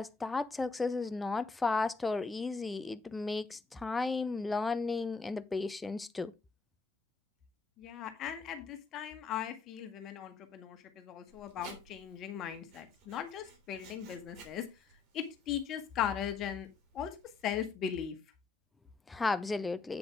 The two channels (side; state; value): right; quieter; 4.7 dB